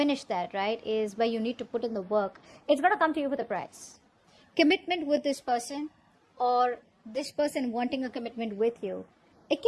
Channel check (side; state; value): both; identical; correlation 1.00